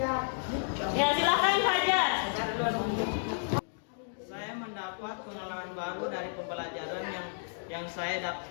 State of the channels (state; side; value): silent; right; digital silence